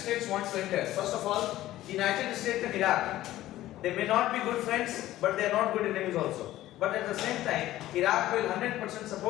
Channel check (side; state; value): right; quieter; 14.9 dB